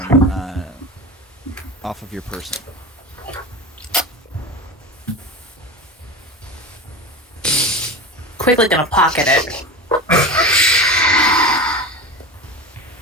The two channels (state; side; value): normal; both; correlation 0.28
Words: off of your person. Quickly gonna pocket it.